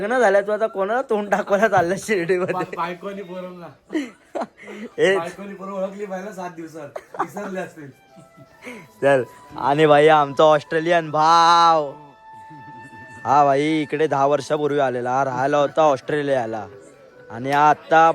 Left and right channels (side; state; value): both; identical; correlation 1.00